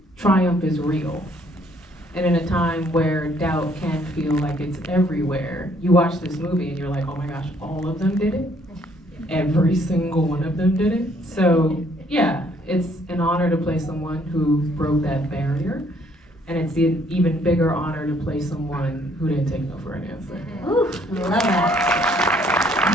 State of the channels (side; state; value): both; normal; correlation 0.65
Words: triumph is real. And in a time where doubt can feel like it's everywhere, you watch this movie and you're like, oh my gosh, all of them did it? Every single one of them did it? So yeah, it's an honor to play someone who broke that barrier. And it's an even bigger honor to play someone who didn't take no for an answer. Ooh, I love that.